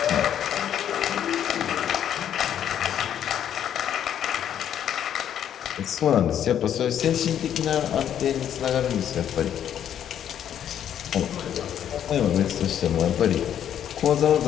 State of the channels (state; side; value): quieter; right; 9.9 dB